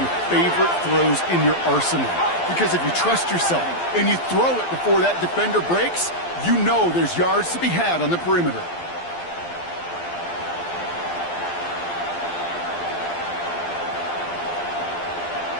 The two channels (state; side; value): late; right; 12 ms